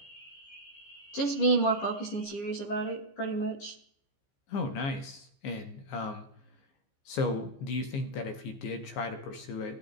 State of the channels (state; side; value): late; right; 15 ms